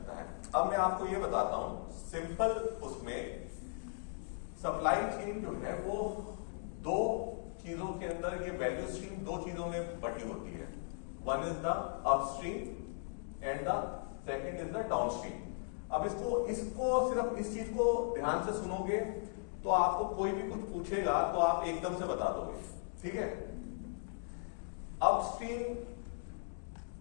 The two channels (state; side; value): silent; right; digital silence